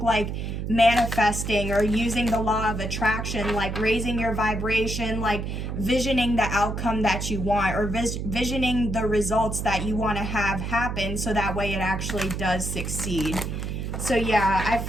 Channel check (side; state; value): right; noise; hum, 4 dB below the sound